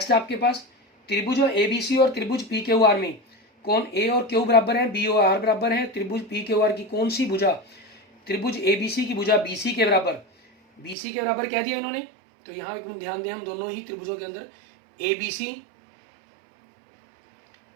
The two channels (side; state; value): left; drops out; at 11.0 s